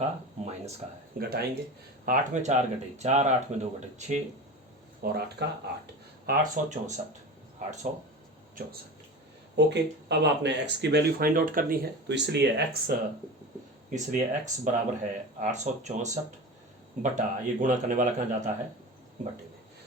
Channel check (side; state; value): both; normal; correlation 0.31